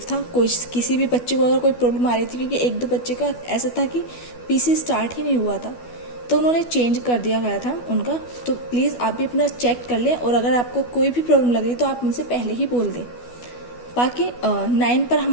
था। कोई किसी भी बच्चे को अगर कोई प्रॉब्लम आ रही थी, क्योंकि एक दो बच्चे का ऐसा था कि पीसी स्टार्ट ही नहीं हुआ था, तो उन्होंने चेंज कर दिया गया था उनका। तो प्लीज़ आप भी अपना चेक कर लें, और अगर आपको कोई भी प्रॉब्लम लग रही तो आप उनसे पहले ही बोल दें। बाकी 9 पर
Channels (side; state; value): right; late; 12 ms